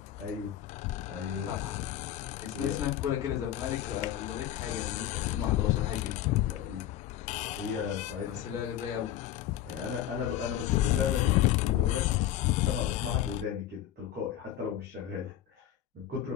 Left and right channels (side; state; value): right; quieter; 11.8 dB